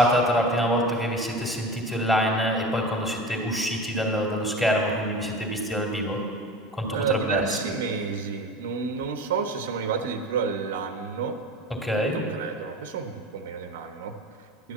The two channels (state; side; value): normal; both; correlation 0.32